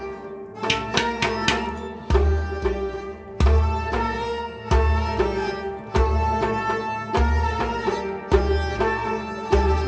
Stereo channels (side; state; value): both; identical; correlation 1.00